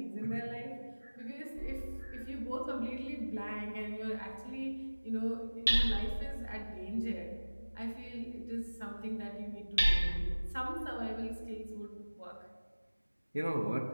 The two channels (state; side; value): inverted; both; correlation -1.00